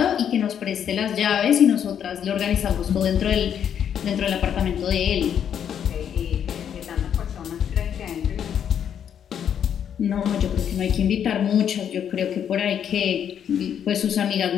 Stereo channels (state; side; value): quieter; right; 8.8 dB